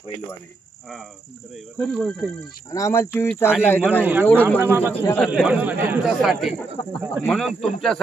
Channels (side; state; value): left; quieter; 3.5 dB